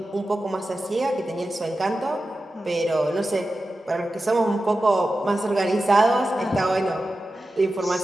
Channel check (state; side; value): normal; both; correlation 0.93